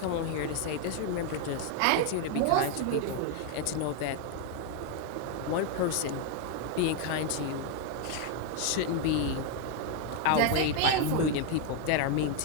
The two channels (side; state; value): both; different; correlation 0.01